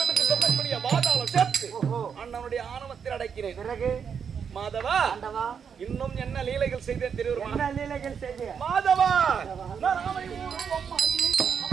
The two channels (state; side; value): quieter; left; 7.0 dB